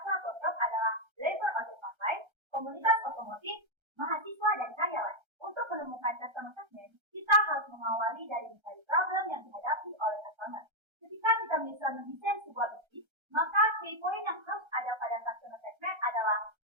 Tokyo adalah driver ojek online, komunitas otomotif, mahasiswa, dan karyawan. Untuk menemukan customer segment, kita harus mengawali dari mencari problem yang dihadapi oleh customer. Ketika kita bisa mendesain sebuah bisnis, maka key point yang harus ada pada customer segment adalah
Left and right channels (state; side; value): late; left; 1.3 ms